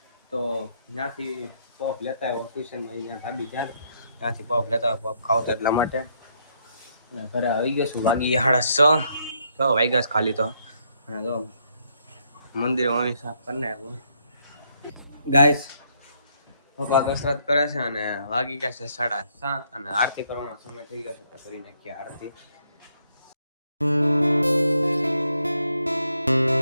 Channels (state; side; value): inverted; both; correlation -0.72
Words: તો ત્યાંથી પફ લેતા આવ્યો ટ્યુશનમાં. અહીંયા ધાબી ત્યાંથી પફ લેતા આવ્યો, પફ ખાવતો એટલા માટે. અને ઘરે આવી ગયો છું, વાગી 6:30 વાગ્યા છે ખાલી. તો અને તો મંદિર મમ્મી સાફ કરીને આવ્યો. ગાઈસ પપ્પા કસરત કરે છે અને વાગી ગયા છે 7:30 અને આરતી કરવાનો સમય થઈ ગયો છે. તો કરી નાખીએ આરતી.